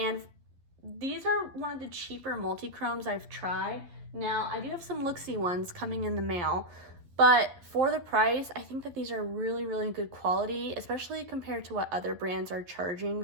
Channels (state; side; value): late; left; 11 ms